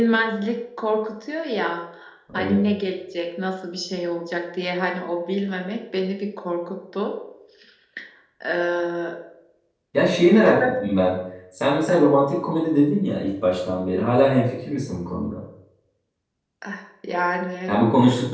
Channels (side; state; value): both; identical; correlation 1.00